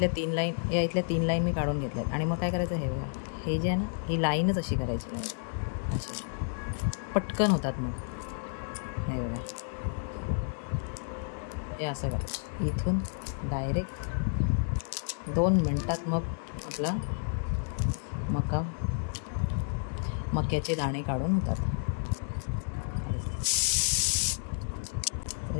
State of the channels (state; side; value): silent; right; digital silence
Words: 3 लाईन मी काढून घेतल्यात. आणि मग काय करायचं, हे बघा, हे जे आहे ना, ही लाईनच अशी करायची, अशी पटकन होतात. मग हे बघा, हे असं करायचं. इथून डायरेक्ट 2 मिनटात मग आपला मक्याचे दाणे काढून होतात.